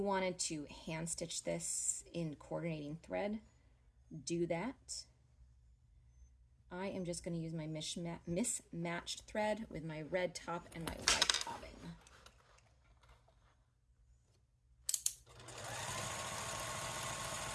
wanted to hand stitch this in coordinating thread, do that. I am just going to use my mismatched thread with my red top and my white bobbin.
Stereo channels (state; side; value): identical; both; correlation 1.00